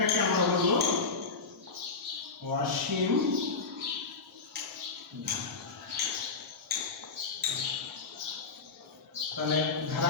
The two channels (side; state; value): right; quieter; 4.4 dB